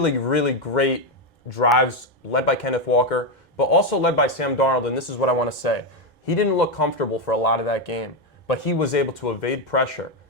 really great drives led by Kenneth Walker, but also led by Sam Darnold, and this is what I want to say. He didn't look comfortable for a lot of that game, but he was able to evade pressure.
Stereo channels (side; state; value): both; normal; correlation 0.07